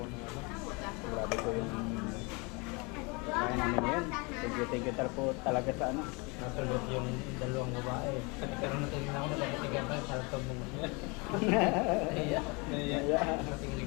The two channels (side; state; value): right; quieter; 29.1 dB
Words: na ano. Grabe po yung kaya namin yan. Thank you po talaga sa ano. Nasulot yung dalawang babae. Pero natingin ako na nagkatigan pa yung sarap mong Iya. Naiya. Nating